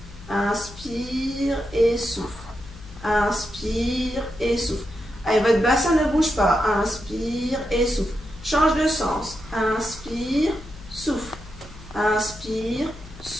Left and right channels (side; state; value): left; noise; hum, 17 dB below the sound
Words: Inspire et souffle. Inspire et souffle. Allez, votre bassin ne bouge pas. Inspire et souffle. Change de sens. Inspire, souffle. Inspire,